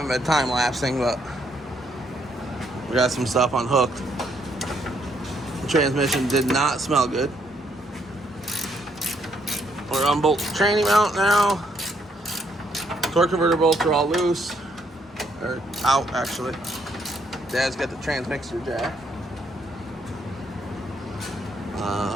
been time lapsing, but we got some stuff unhooked. The transmission did not smell good. We're unbolt the tranny mount now. Torque converter bolts are all loose. Or out actually. Dad's got the transmixer jack.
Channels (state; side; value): normal; both; correlation 0.72